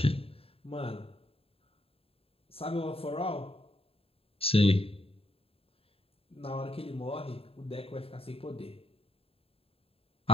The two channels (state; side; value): late; right; 0.27 ms